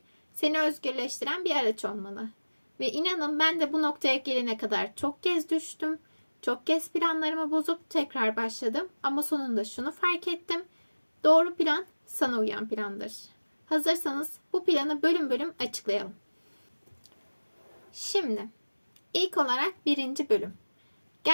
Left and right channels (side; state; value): both; inverted; correlation -1.00